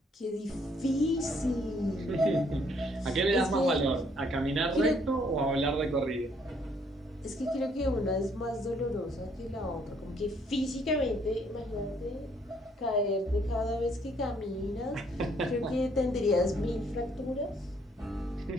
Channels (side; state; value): both; normal; correlation 0.66